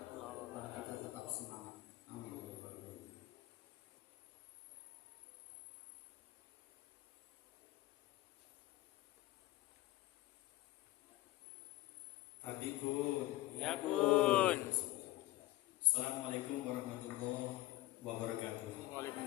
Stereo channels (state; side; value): quieter; right; 17.3 dB